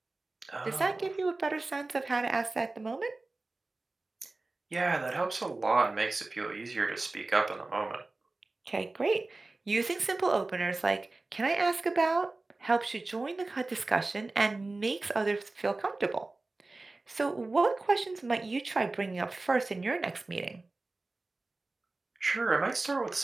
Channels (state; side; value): quieter; left; 3.2 dB